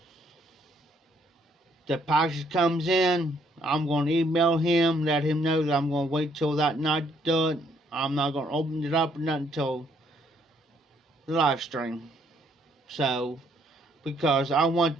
the package comes in. I'm going to email him, let him know that I'm going to wait till that night to do it. I'm not going to open it up or nothing until the live stream. So, because I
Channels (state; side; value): normal; both; correlation 0.69